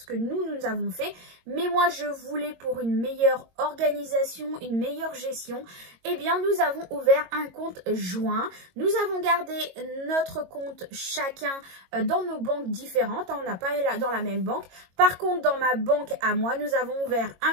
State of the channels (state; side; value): late; left; 22 ms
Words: que nous avons fait, mais moi je voulais pour une meilleure organisation, une meilleure gestion, eh bien nous avons ouvert un compte joint. Nous avons gardé notre compte chacun dans nos banques différentes, on n'a pas dans la même banque. Par contre dans ma banque à moi, nous avons ouvert